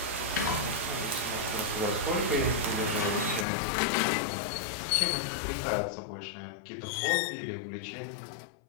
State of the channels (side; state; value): right; drops out; at 3.5 s